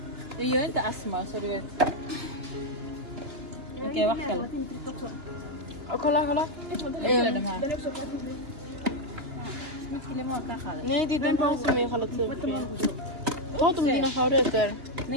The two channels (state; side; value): late; left; 2.9 ms